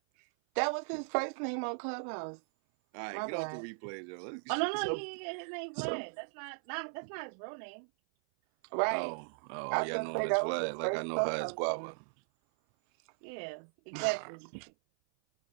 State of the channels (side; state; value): left; silent; 53 dB below the other